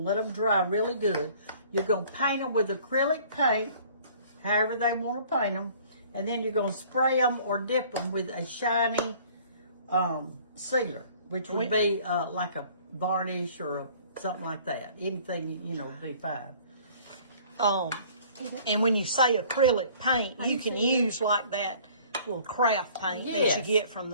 to let them dry really good. You're going to paint them with acrylic paint, however they want to paint them, and then you're going to spray them or dip them with a shiny sealer, which would be like a varnish or something like that. Anything, would be fine. And when you say acrylic paint, you can use like that little craft paint that you get from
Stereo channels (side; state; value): both; inverted; correlation -0.53